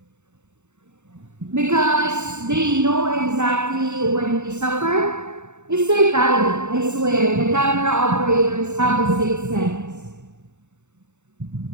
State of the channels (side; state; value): left; late; 0.83 ms